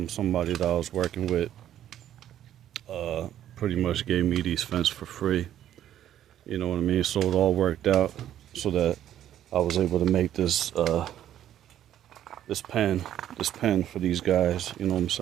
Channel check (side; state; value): left; quieter; 11.4 dB